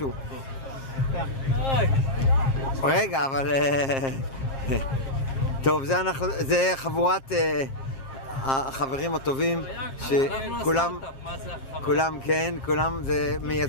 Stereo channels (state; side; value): late; right; 7.5 ms